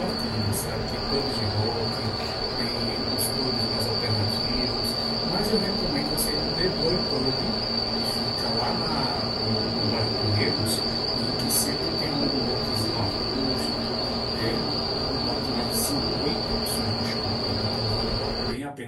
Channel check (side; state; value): both; identical; correlation 1.00